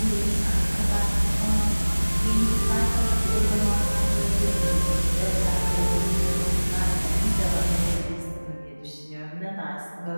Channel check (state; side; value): inverted; both; correlation -1.00